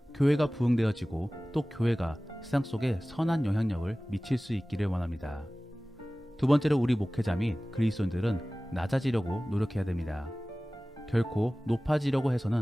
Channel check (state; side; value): normal; both; correlation 0.97